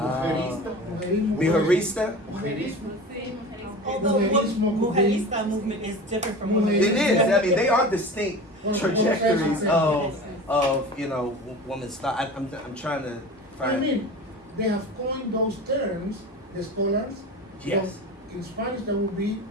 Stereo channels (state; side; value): normal; both; correlation 0.34